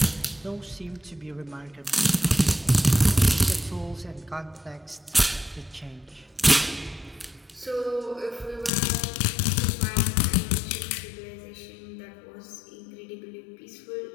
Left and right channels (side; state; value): right; drops out; at 8.7 s